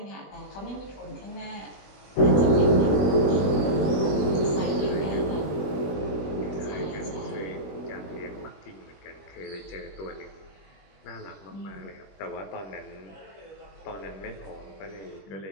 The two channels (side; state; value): right; late; 20 ms